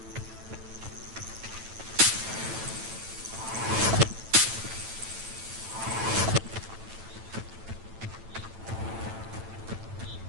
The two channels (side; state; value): left; late; 9.0 ms